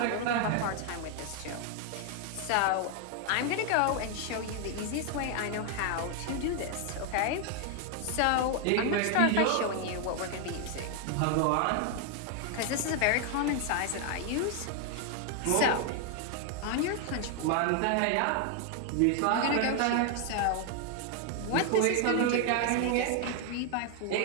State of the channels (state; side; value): different; both; correlation 0.00